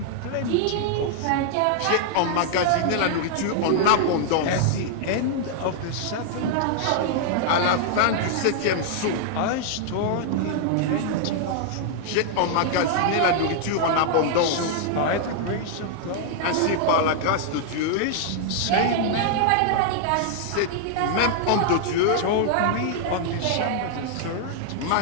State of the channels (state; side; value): different; both; correlation -0.01